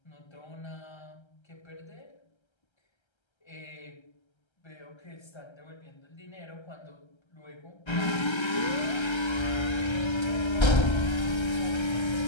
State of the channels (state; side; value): late; right; 1.3 ms